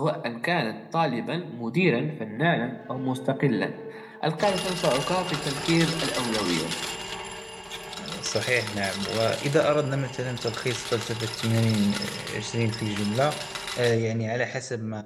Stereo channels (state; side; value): identical; both; correlation 1.00